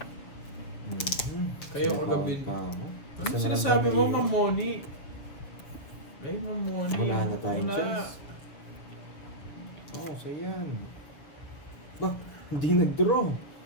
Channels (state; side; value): late; right; 6.9 ms